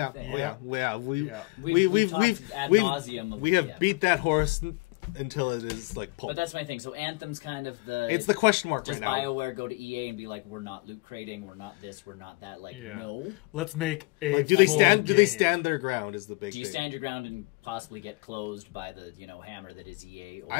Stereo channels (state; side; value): quieter; right; 26.2 dB